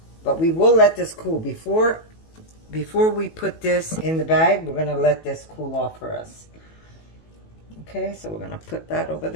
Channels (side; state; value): right; late; 18 ms